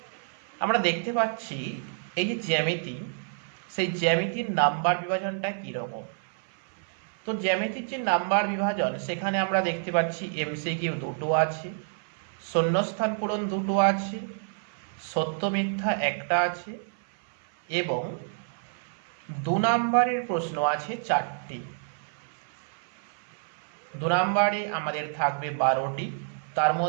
আমরা দেখতে পাচ্ছি এই যে জ্যামিতি, সেই জ্যামিতির নাম্বার বিভাজনটা কীরকম। তো জ্যামিতির যে নাম্বার বিভাজন সেখানে আমরা দেখতে পাচ্ছি এমসিকিউ দুটো আছে, শূন্যস্থান পূরণ দুটো আছে, সত্য মিথ্যা একটা আছে এবং 2 নম্বরের প্রশ্ন আছে 4টি। 2 নম্বরে আমাদের থাকবে 12টি, তার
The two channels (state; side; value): silent; left; 59 dB below the other